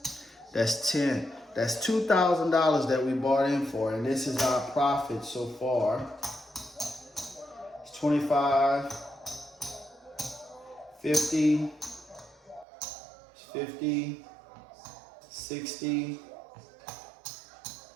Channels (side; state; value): left; drops out; at 12.7 s